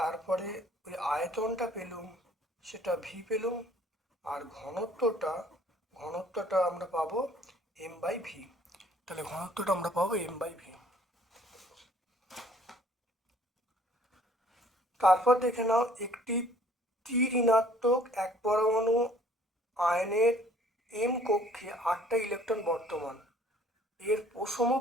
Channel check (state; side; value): normal; both; correlation 0.56